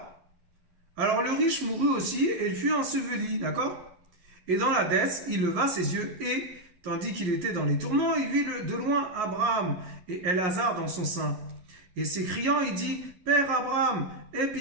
Alors, le riche mourut aussi et il fut enseveli, d'accord? Et dans la dette, il leva ses yeux et, tandis qu'il était dans les tourments, il vit de loin Abraham et Elazar dans son sein. Et s'écriant, il dit, Père Abraham, aie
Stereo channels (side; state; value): left; late; 11 ms